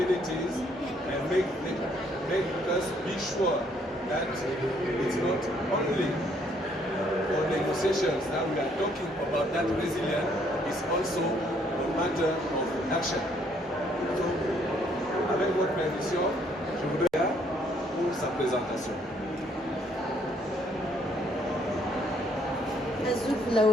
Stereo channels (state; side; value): normal; both; correlation 0.67